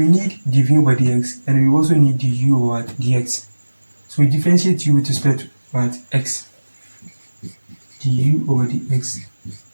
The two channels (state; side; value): inverted; both; correlation -1.00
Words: need dv over dx, and we also need du over what? Dx. So we differentiate u with respect to what? X. Du over dx,